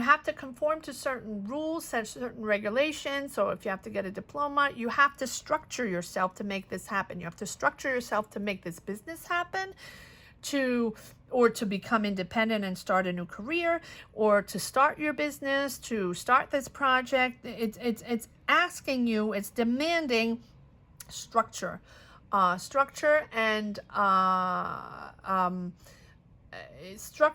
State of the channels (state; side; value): identical; both; correlation 1.00